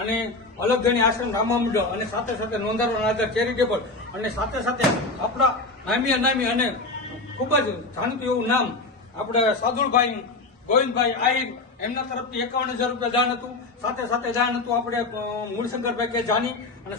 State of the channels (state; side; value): quieter; right; 3.3 dB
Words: અલગ ગણી આશ્રમ રામા મંડળ અને સાથે સાથે નોંધારવાના આધાર ચેરિટેબલ અને સાથે સાથે આપણા નામી અનામી અને ખૂબ જ જાણીતું એવું નામ આપણે સાદુલભાઈ ગોવિંદભાઈ આહિર એમના તરફથી 51,000 રૂપિયા દાન હતું. સાથે સાથે દાન હતું આપણે મૂળશંકરભાઈ કે જાની અને